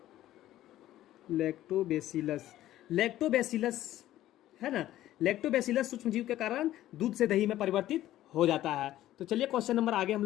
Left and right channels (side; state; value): right; quieter; 13.9 dB